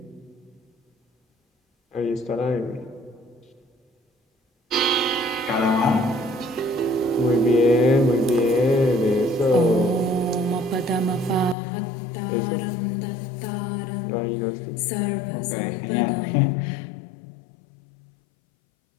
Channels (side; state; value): right; drops out; at 11.6 s